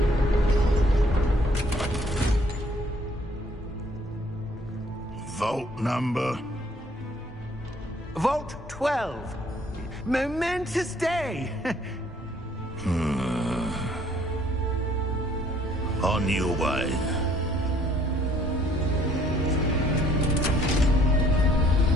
Vault number? Vault 12. Momentous day! On your way.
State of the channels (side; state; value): both; normal; correlation 0.61